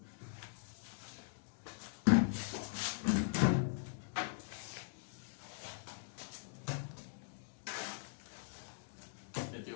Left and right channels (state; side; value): silent; right; digital silence